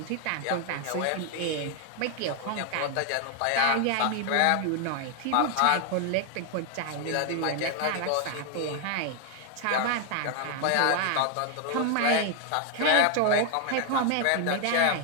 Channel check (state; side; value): different; both; correlation 0.00